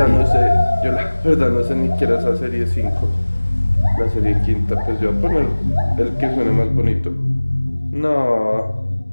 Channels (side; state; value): both; inverted; correlation -1.00